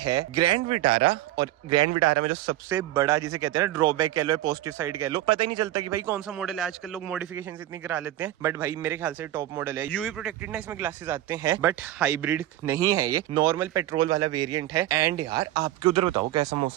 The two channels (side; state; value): left; quieter; 14.3 dB